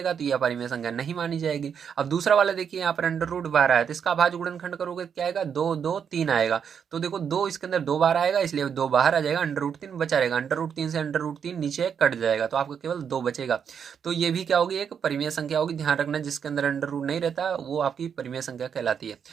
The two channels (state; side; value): quieter; left; 7.4 dB